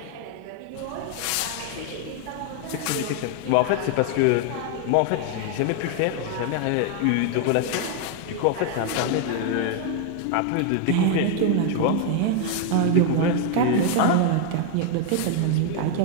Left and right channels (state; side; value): different; both; correlation 0.00